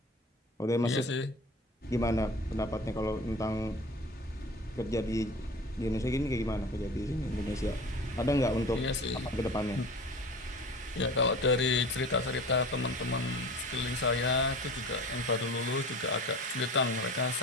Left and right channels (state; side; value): normal; both; correlation 0.38